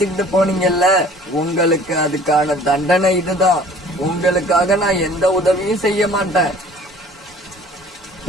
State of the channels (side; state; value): both; normal; correlation 0.50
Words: போனீங்கல்ல, உங்களுக்கு அதுக்கான தண்டனை இதுதான். உங்களுக்காக நான் எந்த உதவியும் செய்ய மாட்டேன்.